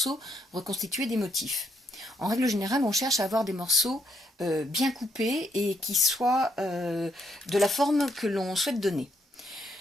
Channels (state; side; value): normal; both; correlation 0.74